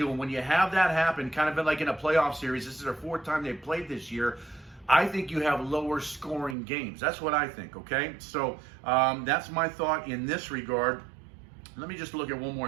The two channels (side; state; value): left; drops out; at 6.6 s